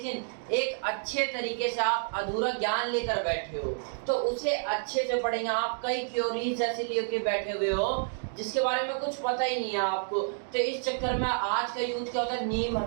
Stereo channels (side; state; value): left; silent; digital silence